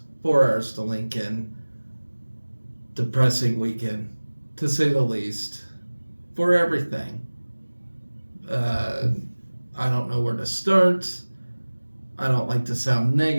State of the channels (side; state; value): both; inverted; correlation -1.00